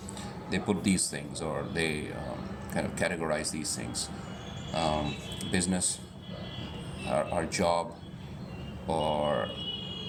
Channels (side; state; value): both; identical; correlation 1.00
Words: they put these things, or they kind of categorize these things: business, our job, or